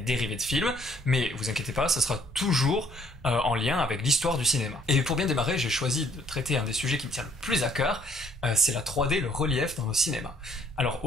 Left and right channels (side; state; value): both; normal; correlation 0.63